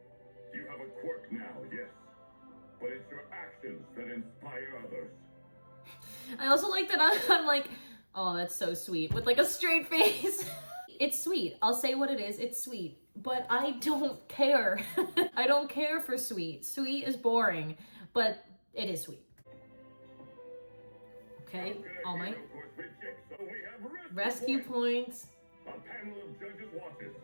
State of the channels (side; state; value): both; inverted; correlation -1.00